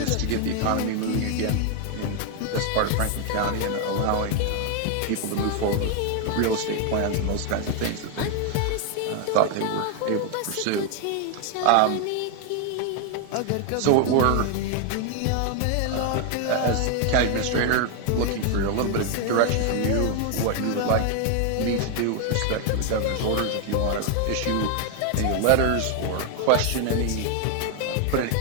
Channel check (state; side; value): different; both; correlation 0.01